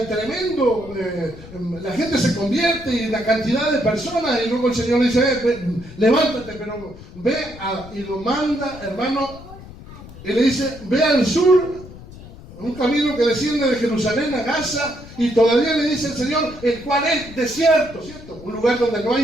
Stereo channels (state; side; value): noise; left; rumble, 17 dB below the sound